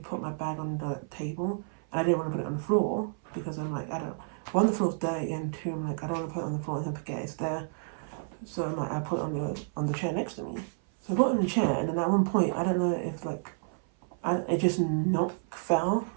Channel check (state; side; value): silent; left; 56 dB below the other